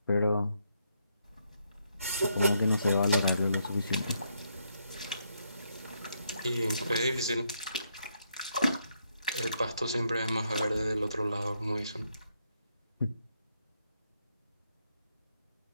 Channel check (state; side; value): inverted; both; correlation -0.77